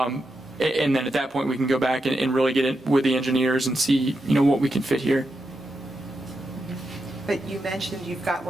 then at that point, we can go back and really get in with the engineers and see, what we can fit here. But you mentioned you've got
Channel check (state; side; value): normal; both; correlation 0.86